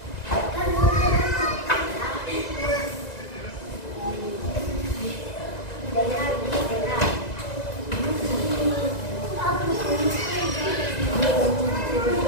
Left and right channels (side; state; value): right; late; 1.9 ms